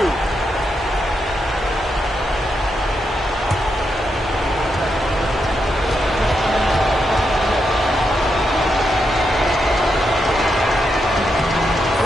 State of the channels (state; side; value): normal; both; correlation 0.83